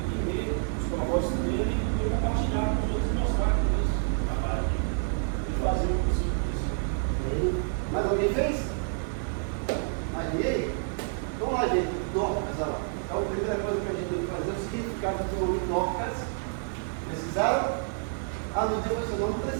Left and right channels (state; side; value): silent; left; 59 dB below the other